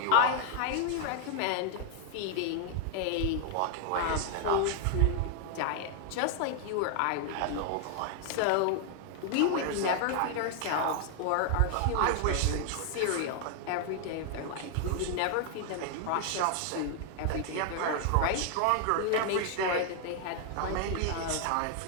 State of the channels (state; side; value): different; both; correlation 0.00